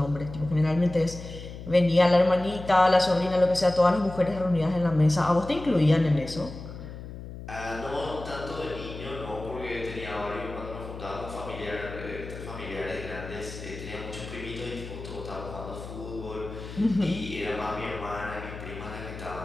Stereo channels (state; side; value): noise; left; hum, 11 dB below the sound